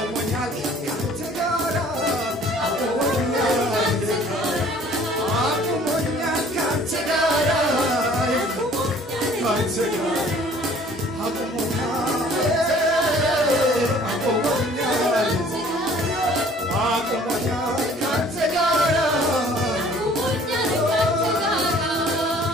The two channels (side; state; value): both; normal; correlation 0.54